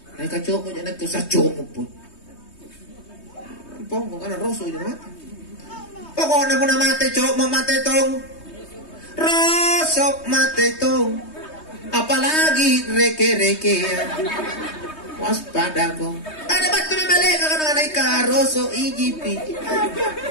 Nah kacau jana tu sacok pun. Pokok kana roso jana mate. Pokoknya pun mate cok mau mate tong. Rosok mate tong. Apalagi reke-reke waspada ko. Ada batu na maleka ka nga ka roso ijipi.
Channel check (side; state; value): right; late; 3.2 ms